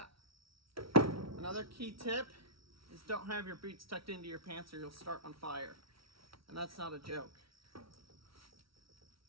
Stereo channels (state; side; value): late; left; 0.75 ms